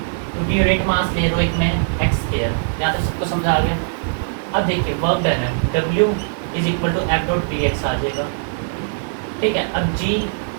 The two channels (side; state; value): left; silent; 66 dB below the other